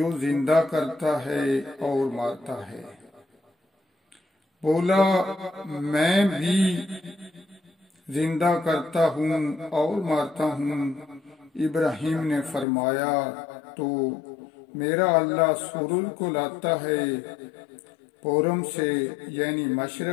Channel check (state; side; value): drops out; right; at 12.7 s